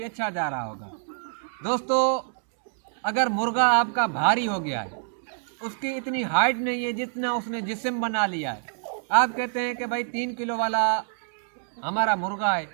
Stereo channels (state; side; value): silent; left; digital silence